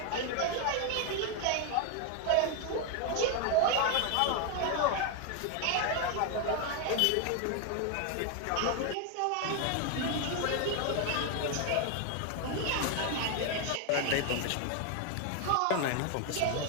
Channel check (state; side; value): different; both; correlation 0.01